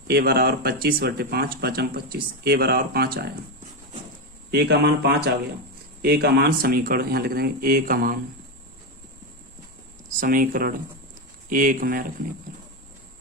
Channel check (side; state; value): both; normal; correlation 0.10